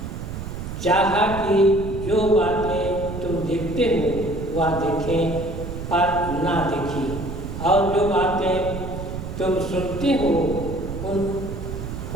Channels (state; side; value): noise; right; rumble, 7 dB below the sound